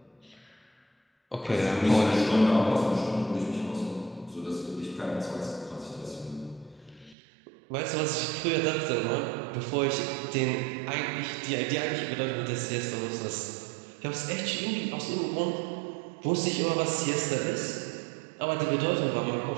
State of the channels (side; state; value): left; drops out; at 7.2 s